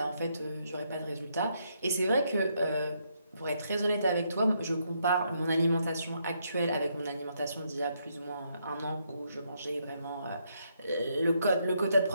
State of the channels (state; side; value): inverted; both; correlation -0.76